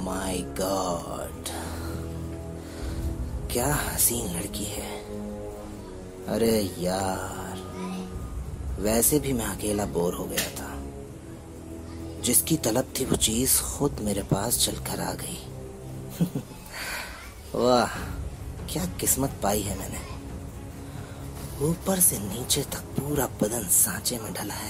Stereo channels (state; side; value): identical; both; correlation 1.00